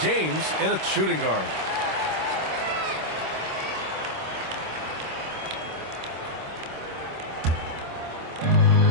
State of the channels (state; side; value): late; left; 26 ms